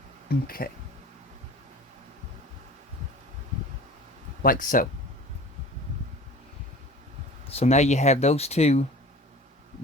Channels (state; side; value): normal; both; correlation 0.41